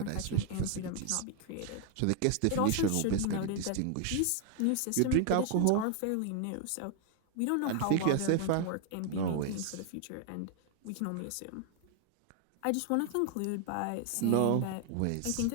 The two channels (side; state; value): both; different; correlation 0.00